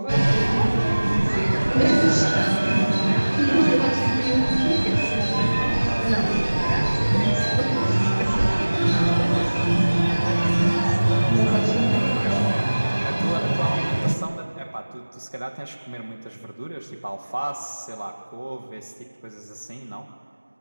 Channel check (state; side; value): inverted; both; correlation -1.00